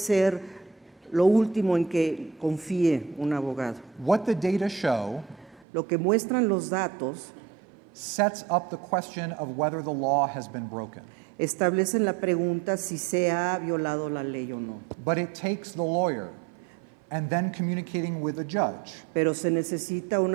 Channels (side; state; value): left; drops out; at 5.7 s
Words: lo último en que confíe un abogado. What the data show Lo que muestran los datos sets up the question of whether the law has been broken. establecen la pregunta si se ha violado la ley o no. But it takes the lawyer and then communicating with the judge Pero se necesita un